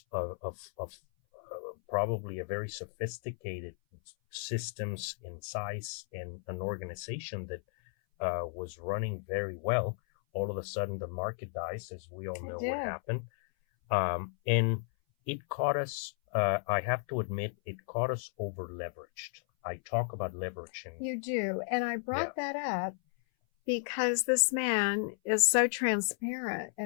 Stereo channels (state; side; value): silent; right; 55 dB below the other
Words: of probably a very sophisticated systems in size and an organization that was running very well. All of a sudden, the market dies, as we all know what happened. And it caught us, I have to admit, it caught us over leveraged. I talk about leveraging. You do. And I brought that up because this man is so transparent